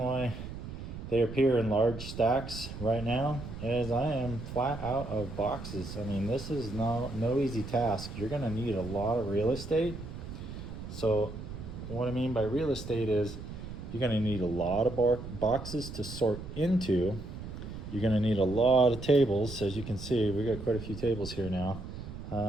they appear in large stacks right now is I am flat out of boxes. I mean, this is no easy task. You're gonna need a lot of real estate. So what I mean by real estate is you're gonna need a lot of boxes to sort into. You're gonna need a lot of tables. As you can see, we got quite a few tables here now.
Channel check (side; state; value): right; noise; rumble, 10 dB below the sound